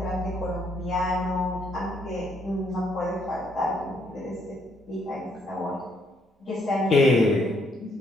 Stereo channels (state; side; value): normal; both; correlation 0.71